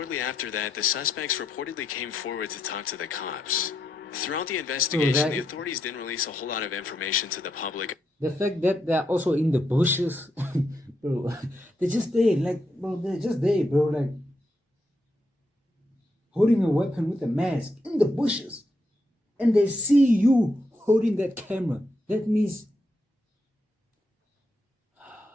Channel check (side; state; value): both; normal; correlation 0.81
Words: after that, the suspects reportedly came forward to talk to the cops. Throughout the investigation, the authorities didn't release a whole lot of information to the public. The fact that they're also in the bushes, bro, they're just there, like, bro, they're just there, bro, like, holding a weapon with a mask in the bushes, and they see you holding that camera. That means,